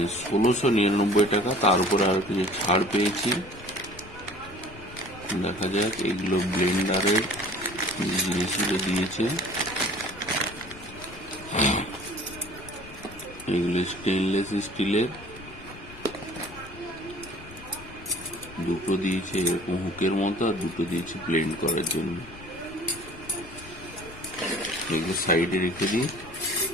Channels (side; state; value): left; noise; rumble, 18 dB below the sound